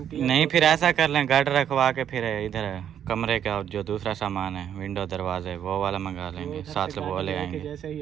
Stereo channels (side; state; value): left; quieter; 9.4 dB